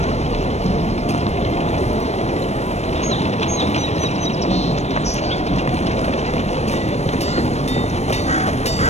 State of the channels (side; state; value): right; late; 0.32 ms